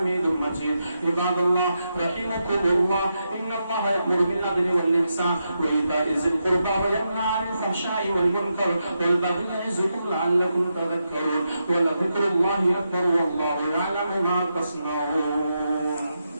مجيد. عباد الله رحمكم الله, إن الله يأمر بالعدل والإحسان وإيتاء ذي القربى وينهى عن الفحشاء والمنكر والبغي يعظكم لعلكم تذكرون. ولذكر الله أكبر والله يعلم ما تصنعون.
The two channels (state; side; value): inverted; both; correlation -0.85